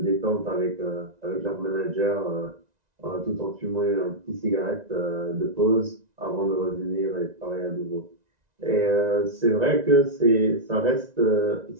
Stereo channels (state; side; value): late; left; 1.9 ms